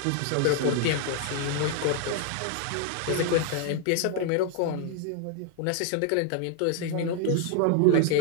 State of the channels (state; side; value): different; both; correlation 0.00